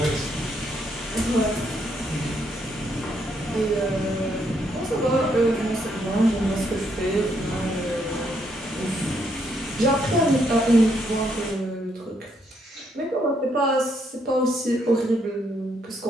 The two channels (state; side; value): normal; both; correlation 0.74